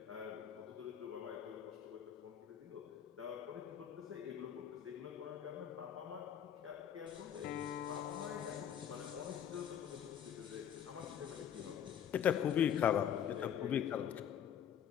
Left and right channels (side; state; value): right; quieter; 9.2 dB